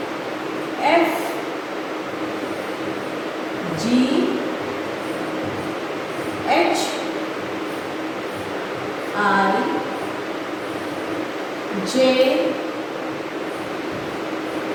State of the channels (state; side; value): identical; both; correlation 1.00